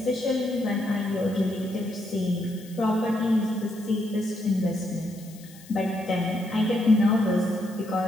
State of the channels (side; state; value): left; noise; hiss, 22 dB below the sound